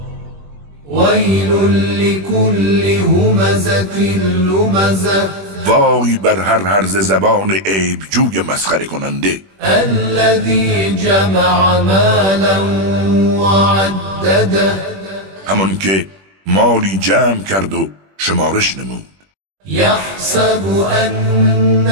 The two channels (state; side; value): late; left; 21 ms